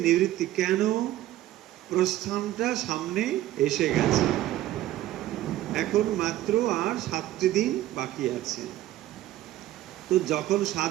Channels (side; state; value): left; quieter; 14.5 dB